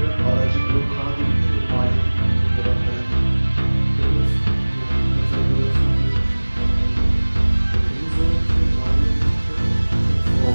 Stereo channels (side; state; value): both; inverted; correlation -1.00